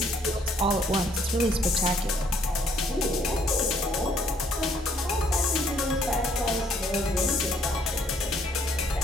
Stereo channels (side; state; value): both; normal; correlation 0.65